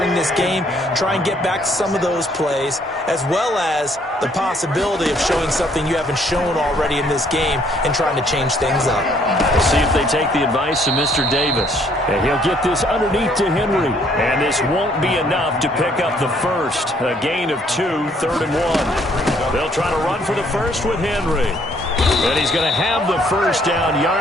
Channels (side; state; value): both; normal; correlation 0.65